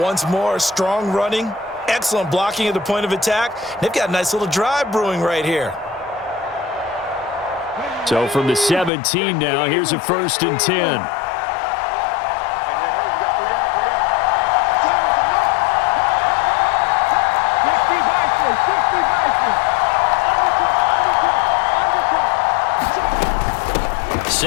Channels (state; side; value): drops out; right; at 8.9 s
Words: more, strong running, excellent blocking at the point of attack. They've got a nice little drive brewing right here. So from the 17 now, here's a 1st and 10.